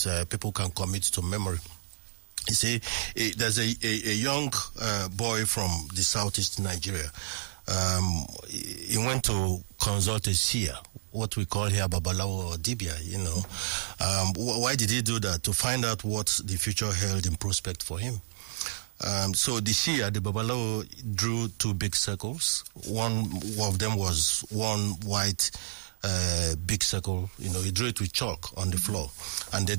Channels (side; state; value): left; silent; digital silence